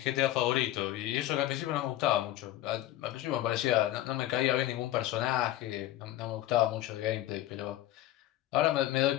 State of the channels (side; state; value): right; quieter; 14.2 dB